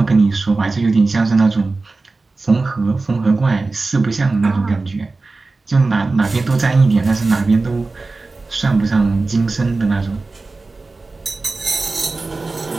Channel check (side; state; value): left; quieter; 3.6 dB